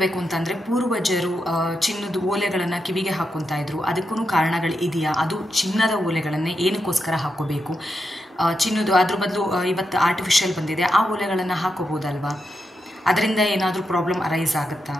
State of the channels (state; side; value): normal; both; correlation 0.85